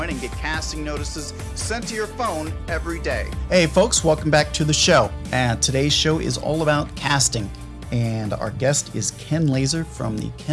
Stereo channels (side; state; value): both; identical; correlation 1.00